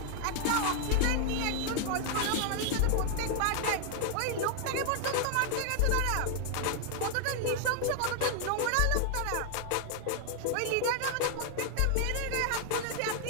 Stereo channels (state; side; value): different; both; correlation 0.00